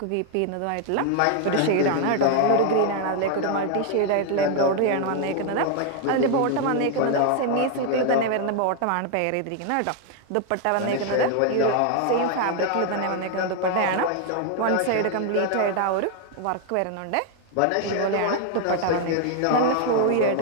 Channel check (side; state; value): both; different; correlation 0.00